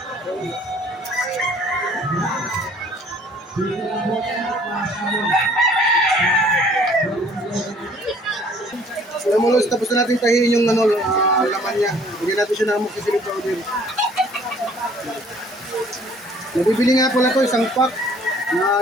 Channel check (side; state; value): both; normal; correlation 0.57